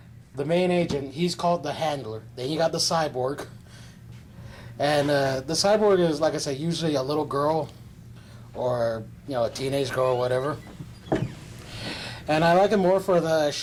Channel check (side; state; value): both; identical; correlation 1.00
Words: main agent. He's called the Handler. Then you got the cyborg, and the cyborg is, like I say, usually a little girl, or a teenage girl or whatever. And I like it more for the